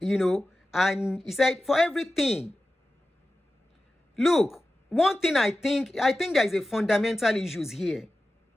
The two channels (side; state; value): both; normal; correlation 0.94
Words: and he said, for everything. Look, one thing I think there is a fundamental issues here